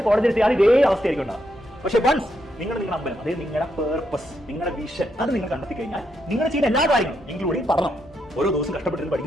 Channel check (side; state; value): both; normal; correlation 0.79